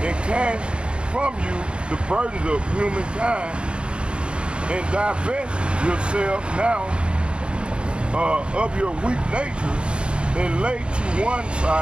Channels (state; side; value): late; left; 0.056 ms